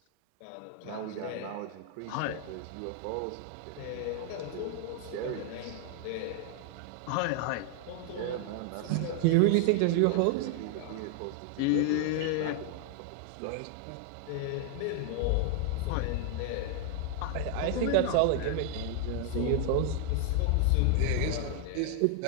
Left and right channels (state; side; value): different; both; correlation 0.00